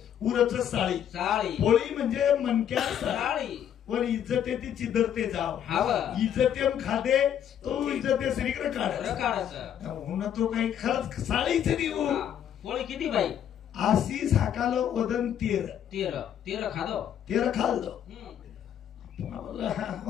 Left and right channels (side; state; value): right; quieter; 9.6 dB